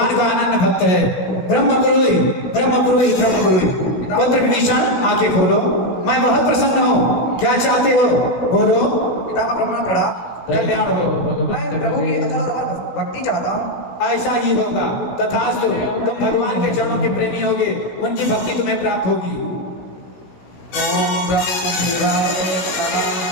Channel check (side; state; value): right; late; 16 ms